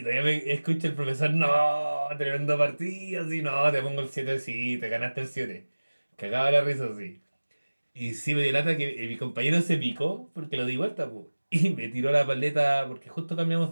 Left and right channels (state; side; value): inverted; both; correlation -1.00